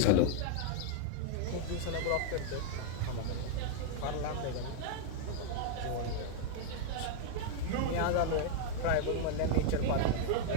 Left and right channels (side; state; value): both; different; correlation 0.00